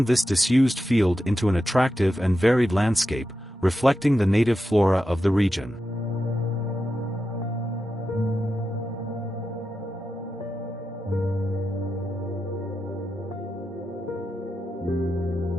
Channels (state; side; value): normal; both; correlation 0.89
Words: this disused field into an attractive and varied landscape, reflecting the native flora of the region.